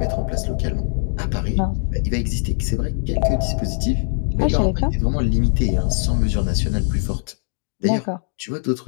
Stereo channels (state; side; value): silent; right; digital silence